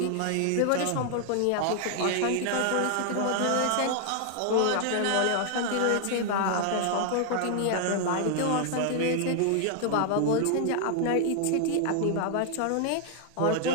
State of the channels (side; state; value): both; different; correlation 0.00